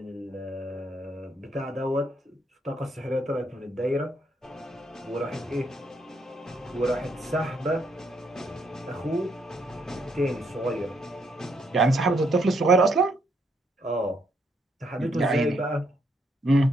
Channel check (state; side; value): normal; both; correlation 0.74